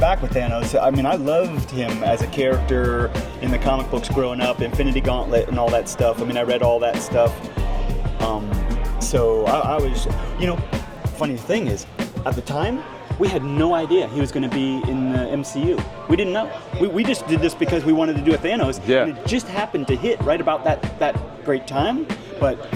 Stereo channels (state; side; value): identical; both; correlation 1.00